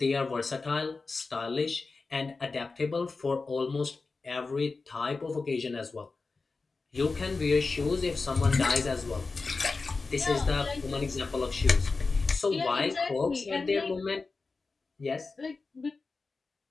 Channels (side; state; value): right; quieter; 4.0 dB